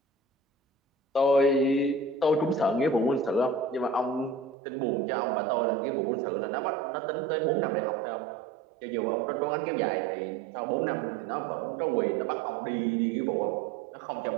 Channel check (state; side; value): drops out; left; at 4.5 s